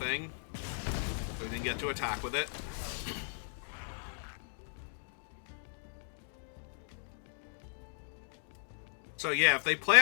So we didn't get to attack with it. So yeah, if they play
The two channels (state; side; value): silent; right; digital silence